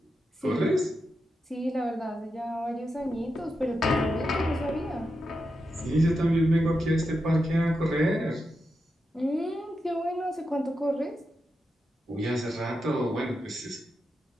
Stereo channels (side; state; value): both; normal; correlation 0.87